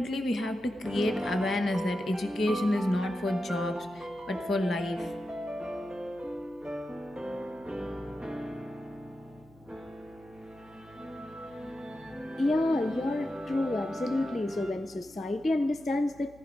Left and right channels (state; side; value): noise; left; hum, 27 dB below the sound